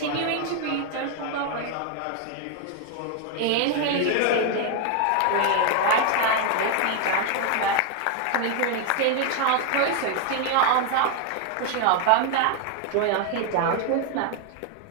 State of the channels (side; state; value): both; different; correlation 0.00